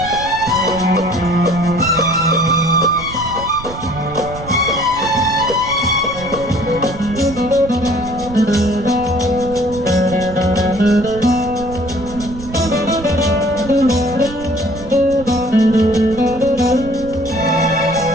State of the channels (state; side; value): noise; right; rumble, 13 dB below the sound